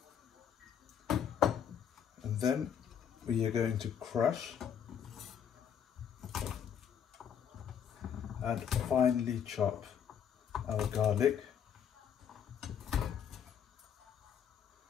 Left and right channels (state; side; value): quieter; right; 8.3 dB